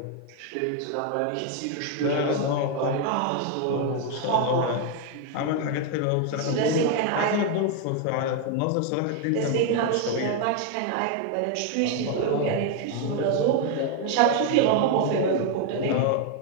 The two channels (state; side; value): different; both; correlation 0.01